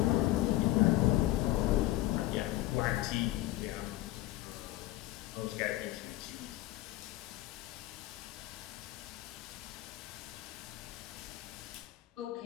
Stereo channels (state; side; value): quieter; right; 16.3 dB